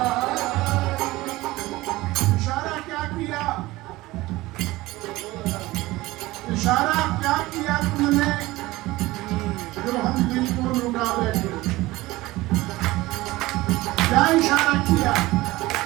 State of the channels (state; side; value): quieter; left; 19.1 dB